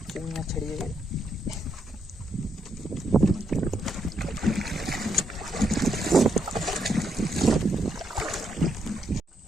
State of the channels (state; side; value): normal; both; correlation 0.77